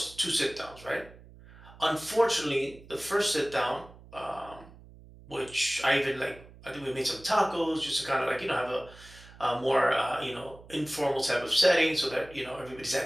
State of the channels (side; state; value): right; noise; hum, 21 dB below the sound